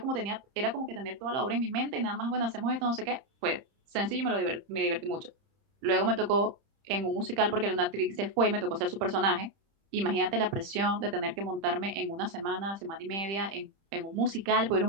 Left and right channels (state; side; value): late; left; 30 ms